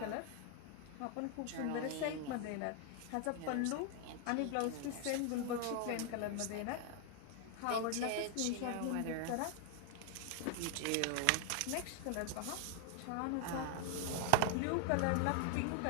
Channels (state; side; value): different; both; correlation 0.00